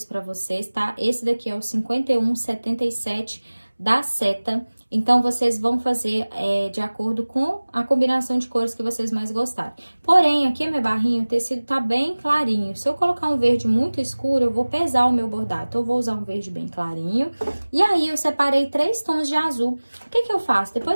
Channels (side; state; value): both; inverted; correlation -1.00